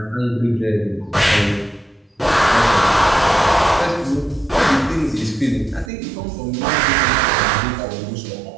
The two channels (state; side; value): drops out; left; at 5.9 s